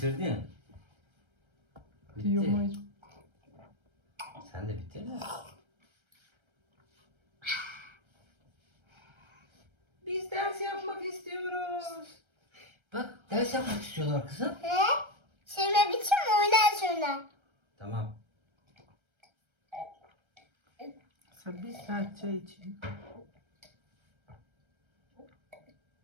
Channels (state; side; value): late; left; 1.3 ms